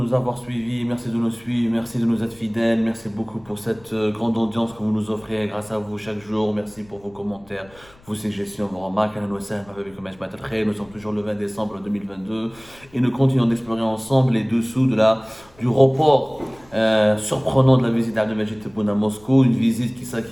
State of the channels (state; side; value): noise; left; rumble, 27 dB below the sound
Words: avoir suivis, merci de nous suivre, merci de nous être fidèles, merci beaucoup pour cette grande audience que vous nous offrez grâce à vous chaque jour, merci pour vos commentaires, vos suggestions, vos remarques. Nous sommes toujours le 20 décembre 2022 et nous continuons d'explorer ensemble les dessous du report surprenant de la visite d'Abdelmajid Tebboune à Moscou, une visite